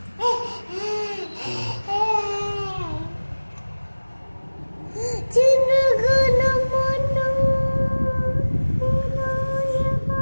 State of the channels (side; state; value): both; inverted; correlation -1.00